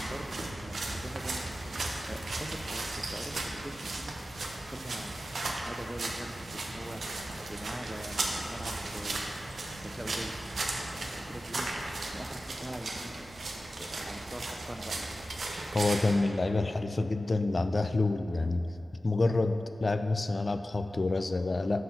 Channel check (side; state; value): both; normal; correlation 0.94